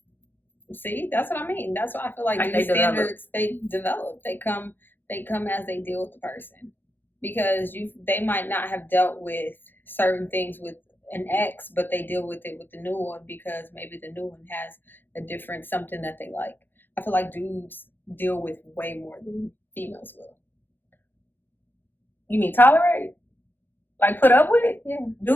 See, that's what I mean. That's why I feel like these standards, they develop. They come as they deal with the person. Because they might not have dealt with certain things with an ex, but they deal with it with the new one because maybe the new one has a different something that they like. I feel like dudes deal with way more than females will. You mean tolerate? Like, put up with it? Yeah.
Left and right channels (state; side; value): late; right; 0.097 ms